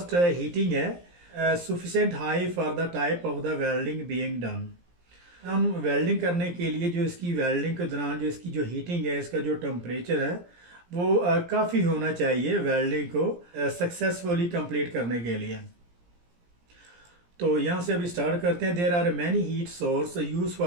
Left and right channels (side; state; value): left; late; 17 ms